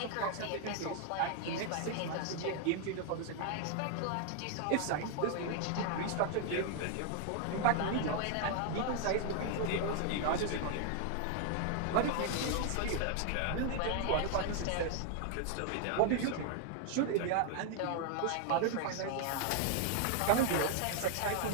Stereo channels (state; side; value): different; both; correlation 0.00